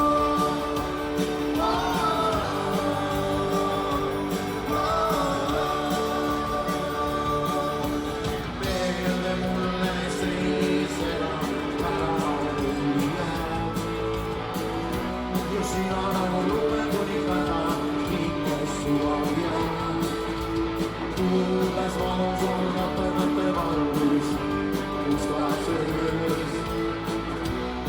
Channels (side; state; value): both; identical; correlation 1.00